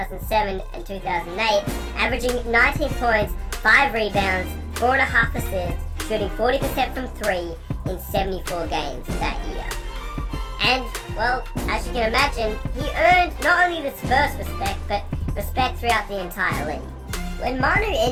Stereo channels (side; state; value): both; identical; correlation 1.00